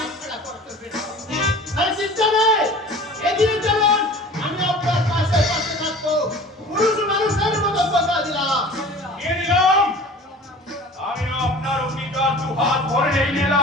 ছাড়া করতে পেরেছেন। আরে চিন্তা নেই, এগিয়ে চলুন, আমি আপনার পাশে পাশে থাকবো। পুরুষ মানুষের মতো কথা দিলাম। নিয়ে নিলাম, আমি আপনার অঙ্গীকার দু হাত ভরে নিয়ে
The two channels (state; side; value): normal; both; correlation 0.42